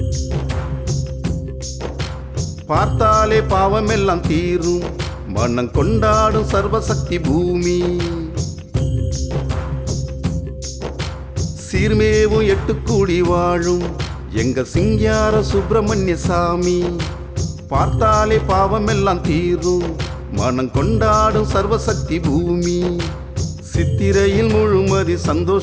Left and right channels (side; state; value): both; identical; correlation 1.00